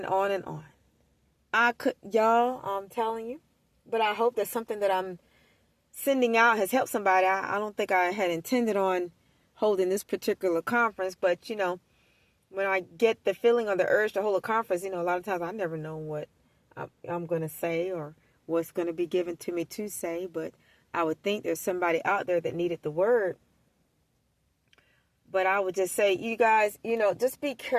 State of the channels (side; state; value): both; identical; correlation 1.00